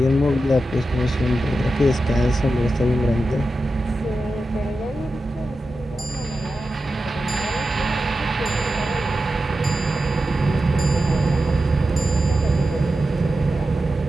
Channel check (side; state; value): both; normal; correlation 0.91